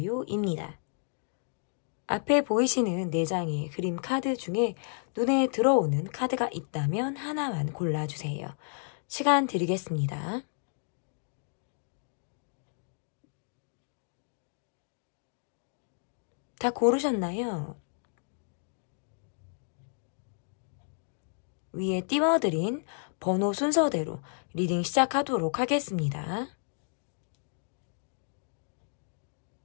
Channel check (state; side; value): silent; right; digital silence